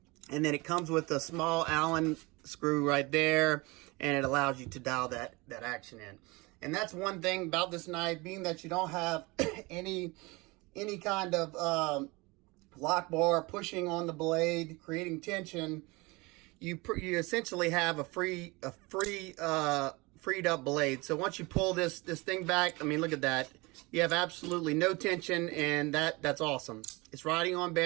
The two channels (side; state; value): left; quieter; 24.6 dB